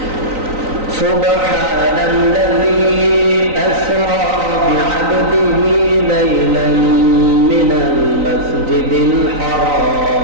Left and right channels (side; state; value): left; late; 3.9 ms